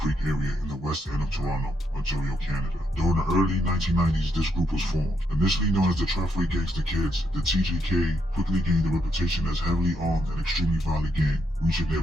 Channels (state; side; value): normal; both; correlation 0.78